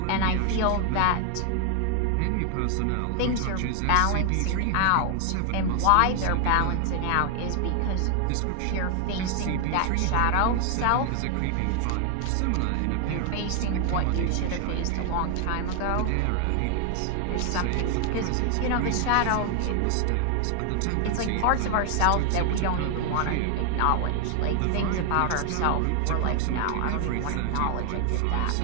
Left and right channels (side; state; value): both; different; correlation 0.00